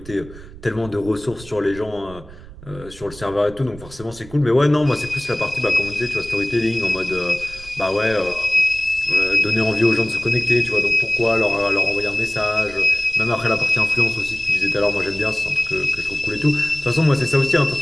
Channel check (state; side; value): noise; right; rumble, 18 dB below the sound